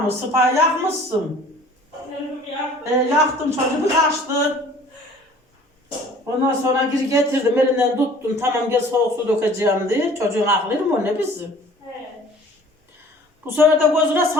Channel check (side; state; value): both; normal; correlation 0.50